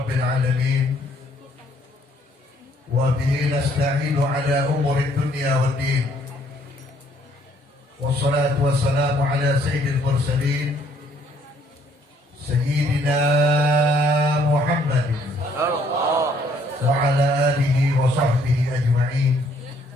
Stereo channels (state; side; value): normal; both; correlation 0.65